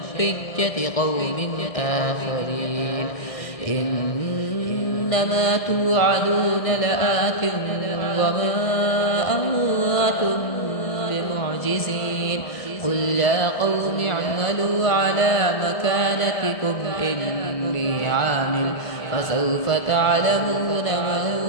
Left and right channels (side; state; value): right; late; 1.7 ms